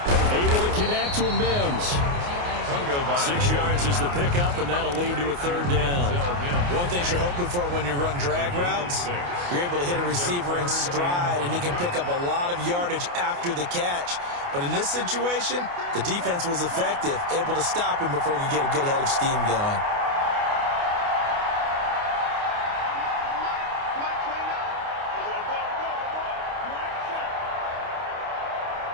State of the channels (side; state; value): left; late; 29 ms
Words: Able to connect with Mims. 6 yards is the pickup, and that'll lead to a 3rd down. One thing you're hoping for when you run drag routes, you're able to hit a receiver in stride, and he can pick up a lot of yardage after the catch. But in this situation, the defense was effective, able to stop him before he could get a good head of steam going.